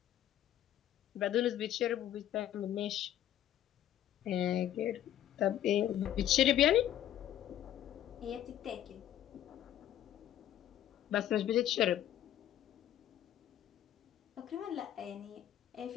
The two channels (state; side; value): quieter; right; 11.7 dB